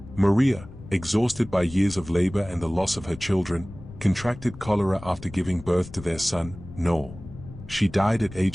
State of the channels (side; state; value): left; noise; rumble, 16 dB below the sound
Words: Maria, exhausted by years of labor and the loss of her children, contracted cholera after giving birth to their son, Noel. She died at